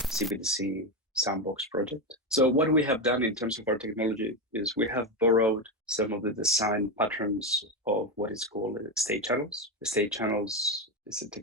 sandbox project. So what we have done in terms of our technology is we have borrowed some of the design patterns of what is called state channels. The state channels is a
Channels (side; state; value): both; normal; correlation 0.12